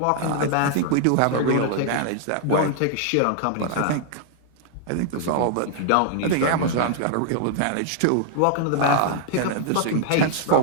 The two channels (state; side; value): different; both; correlation -0.01